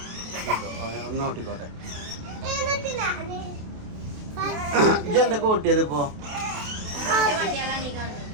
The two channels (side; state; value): left; late; 28 ms